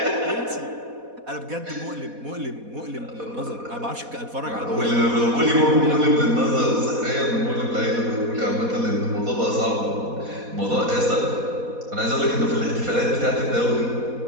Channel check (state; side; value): late; left; 4.1 ms